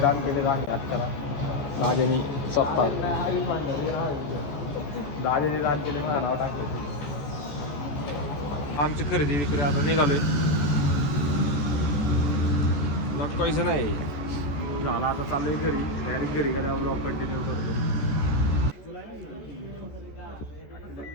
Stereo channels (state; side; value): late; right; 14 ms